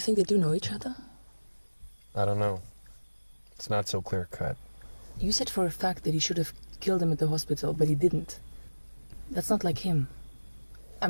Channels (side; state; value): both; inverted; correlation -1.00